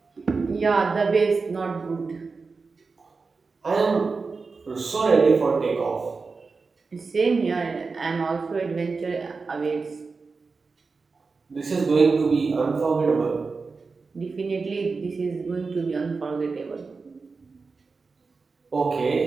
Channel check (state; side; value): quieter; left; 4.4 dB